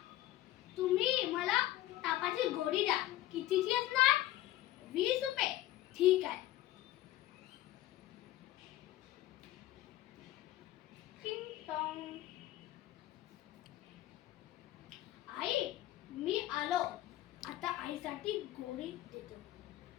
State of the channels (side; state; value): right; quieter; 14.9 dB